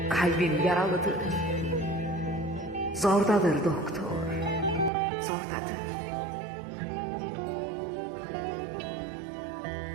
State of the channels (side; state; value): left; drops out; at 4.9 s